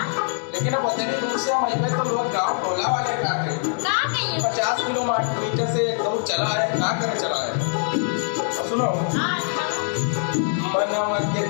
लेकिन अब उतनी दूर से हम अइबे तो लोग गाँव टोला वाले का के 50 किलोमीटर से एक दौड़ चला है, का करे चला है। और सुनो, मनवा के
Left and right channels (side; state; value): right; silent; digital silence